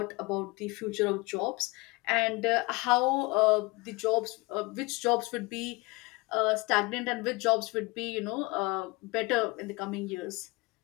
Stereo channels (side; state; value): right; quieter; 25.0 dB